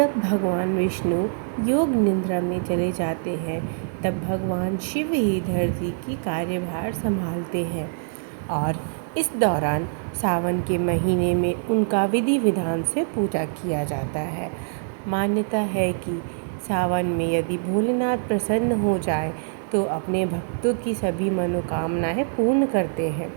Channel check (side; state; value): left; silent; digital silence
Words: भगवान विष्णु योग निद्रा में चले जाते हैं तब भगवान शिव ही धरती की कार्यभार संभालते हैं और इस दौरान सावन के महीने में उनका विधि विधान से पूजा किया जाता है। मान्यता है कि सावन में यदि भोलेनाथ प्रसन्न हो जाए तो अपने भक्तों की सभी मनोकामनाएं पूर्ण करते हैं।